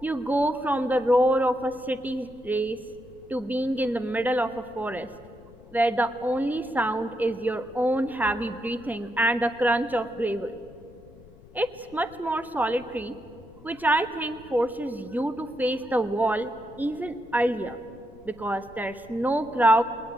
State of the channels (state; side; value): noise; left; rumble, 23 dB below the sound